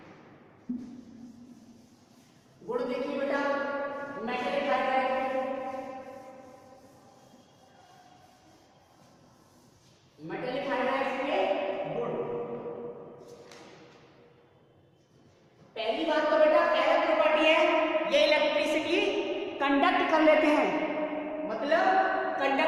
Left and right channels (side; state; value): both; identical; correlation 1.00